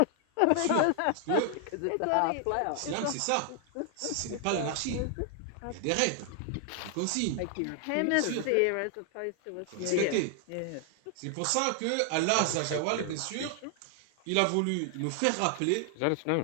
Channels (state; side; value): different; both; correlation 0.00